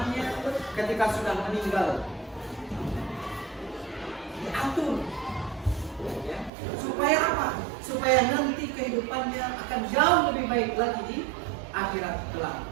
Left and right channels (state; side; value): drops out; left; at 6.5 s